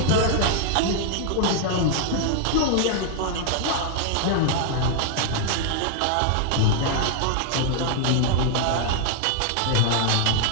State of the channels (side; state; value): both; different; correlation 0.00